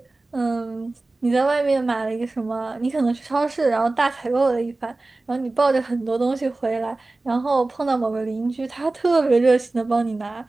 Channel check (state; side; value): quieter; left; 3.2 dB